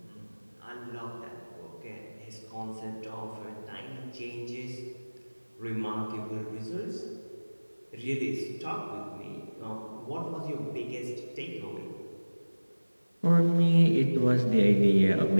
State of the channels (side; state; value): both; inverted; correlation -1.00